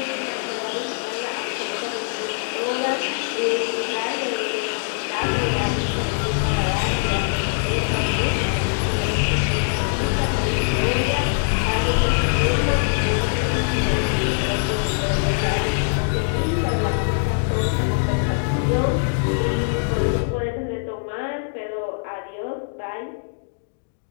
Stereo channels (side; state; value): right; silent; digital silence